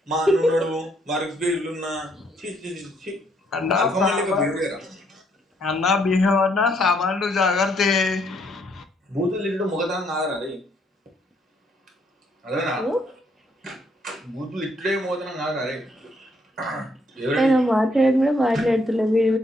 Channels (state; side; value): normal; both; correlation 0.70